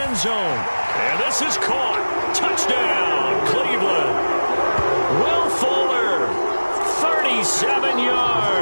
zone. And this is caught. Touchdown, Cleveland. Will Fuller, 37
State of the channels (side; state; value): both; inverted; correlation -1.00